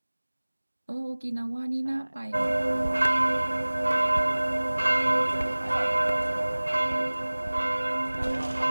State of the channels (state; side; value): inverted; both; correlation -1.00